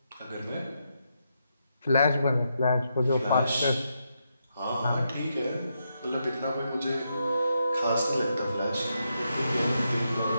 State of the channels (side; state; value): both; inverted; correlation -0.82